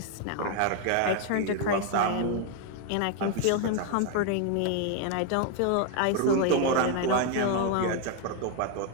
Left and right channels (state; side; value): different; both; correlation 0.00